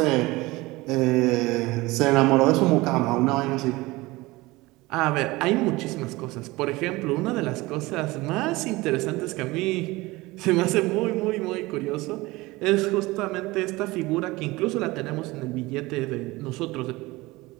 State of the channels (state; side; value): quieter; left; 21.1 dB